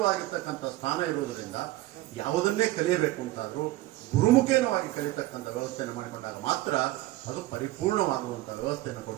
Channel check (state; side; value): quieter; left; 17.4 dB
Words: ಸ್ಥಾನ ಇರುವುದರಿಂದ ಯಾವುದನ್ನೇ ಕಲಿಯಬೇಕು ಅಂತಾದ್ರೂ ಗುರುಮುಖೇನವಾಗಿ ಕಲಿತಕ್ಕಂಥ ವ್ಯವಸ್ಥೆಯನ್ನು ಮಾಡಿಕೊಂಡಾಗ ಮಾತ್ರ ಅದು ಪರಿಪೂರ್ಣವಾಗುವಂಥ ವ್ಯವಸ್ಥೆಯನ್ನು